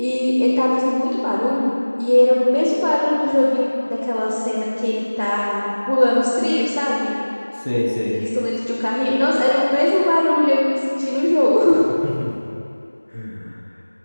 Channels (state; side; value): inverted; both; correlation -1.00